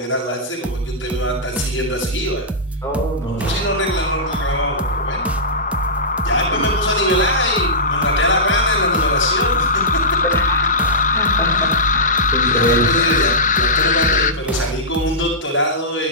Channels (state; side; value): normal; both; correlation -0.15